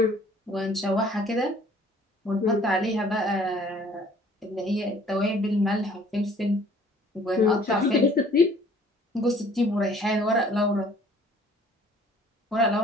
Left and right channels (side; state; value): both; normal; correlation 0.55